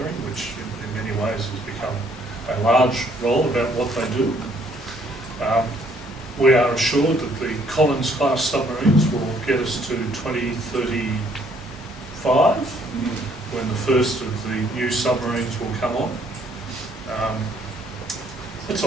which in many ways has become a large role about what they do. We are assured that the Collins-class submarines will get us to 2035, when the first of the new submarines will come on. It's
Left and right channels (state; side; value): normal; both; correlation 0.65